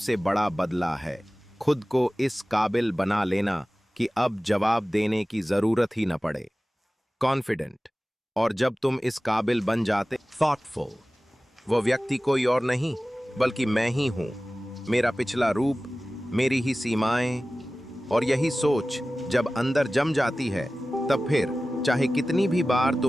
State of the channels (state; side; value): normal; both; correlation 0.97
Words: बड़ा बदला है, खुद को इस काबिल बना लेना कि अब जवाब देने की जरूरत ही न पड़े। कॉन्फिडेंट। और जब तुम इस काबिल बन जाते, थॉटफुल, वो व्यक्ति कोई और नहीं बल्कि मैं ही हूं, मेरा पिछला रूप, मेरी ही सीमाएं। और यही सोच जब अंदर जम जाती है, तब फिर चाहे कितनी भी बार